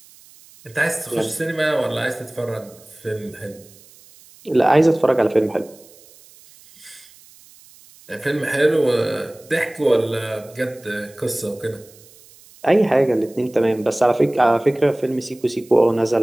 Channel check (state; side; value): noise; right; hiss, 25 dB below the sound